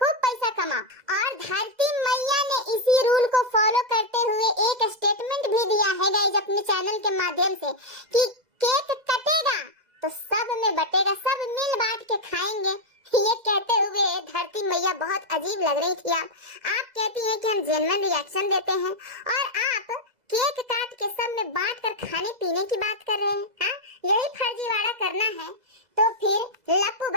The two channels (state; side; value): late; left; 2.0 ms